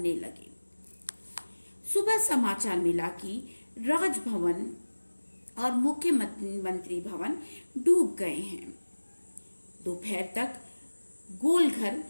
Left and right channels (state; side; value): inverted; both; correlation -1.00